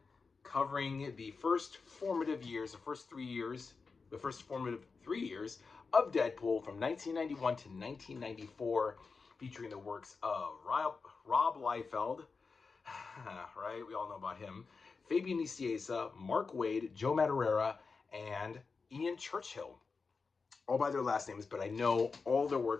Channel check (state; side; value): quieter; right; 4.7 dB